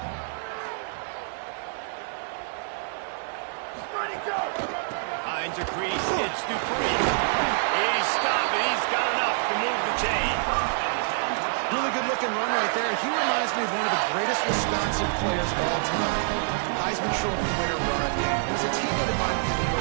Finds a crease, gets Dupree. He's stopping, he's got enough to move the chain. Really good-looking run right there. He reminds me of one of the greatest Wisconsin players of all time. Heisman Trophy winner run. He was a teammate of mine with the New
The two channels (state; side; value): silent; left; digital silence